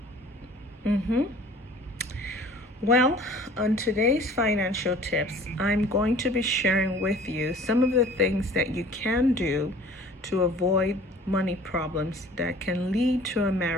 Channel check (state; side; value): normal; both; correlation 0.48